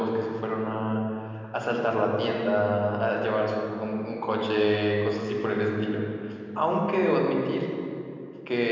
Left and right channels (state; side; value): identical; both; correlation 1.00